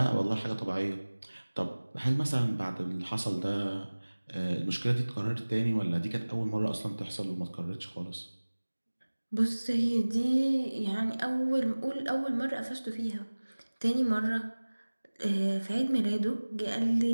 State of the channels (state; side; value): inverted; both; correlation -1.00